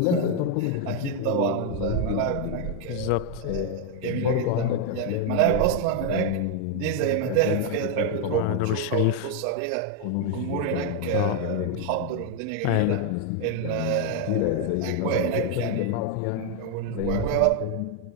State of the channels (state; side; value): different; both; correlation 0.01